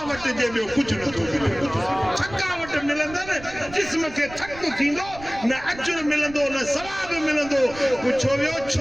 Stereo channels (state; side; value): noise; right; rumble, 17 dB below the sound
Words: जे ॿियो कुझु नथो मिले थकावट मिलंदनि जिस्म खे थक थींदो न अजुर मिलंदो न सवाब मिलंदो पुछो वियो